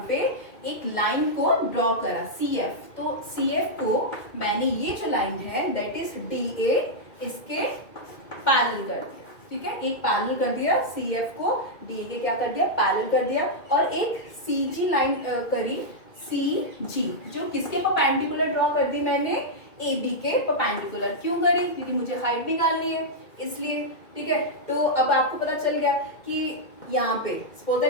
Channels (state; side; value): late; right; 2.3 ms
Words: पे एक लाइन को ड्रॉ करा, CF। तो CF को मैंने ये जो लाइन है दैट इज DA, इसके पैरेलल कर दिया। ठीक है, एक पैरेलल कर दिया, CF को DA के क्या कर दिया, पैरेलल कर दिया, और एक CG लाइन करी, CG, जो किसके परपेंडिकुलर ड्रॉ कर दी मैंने, AB के परपेंडिकुलर। क्यों करी, क्योंकि मुझे हाइट निकालनी है इसलिए। ठीक है, तो अब आपको पता चल गया कि यहाँ पे सपोज